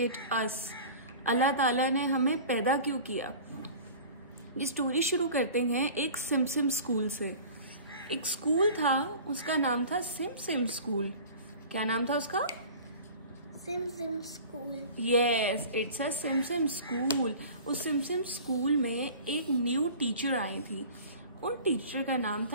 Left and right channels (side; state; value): both; inverted; correlation -0.41